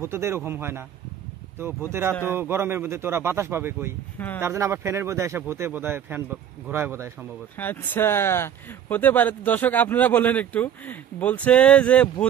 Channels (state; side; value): quieter; left; 9.5 dB